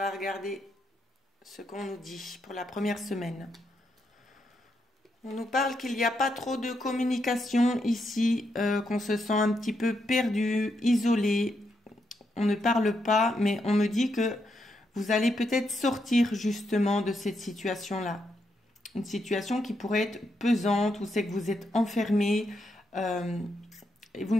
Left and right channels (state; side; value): normal; both; correlation 0.80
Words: regarder ce qu'on nous dit pour la première semaine. On nous parle qu'il n'y a pas trop de communication ici, qu'on se sent un petit peu perdu, isolé. On ne parle pas, mais on me dit que vous allez peut-être sortir justement de cette situation-là. Une situation qui pourrait être pesante, où c'est que vous êtes enfermé, et vous